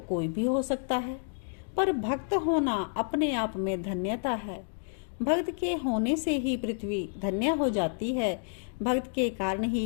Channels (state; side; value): silent; right; digital silence